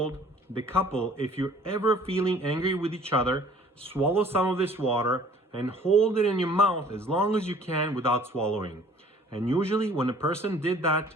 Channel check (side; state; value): both; normal; correlation 0.53